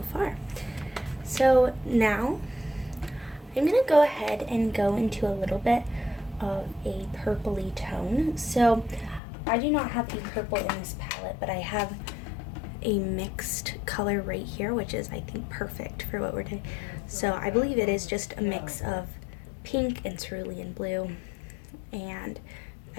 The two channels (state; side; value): drops out; right; at 9.2 s